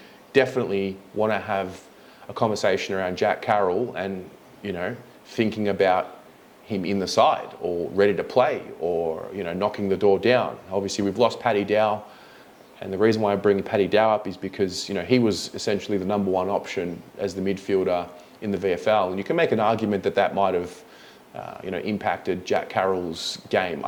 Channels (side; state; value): both; identical; correlation 1.00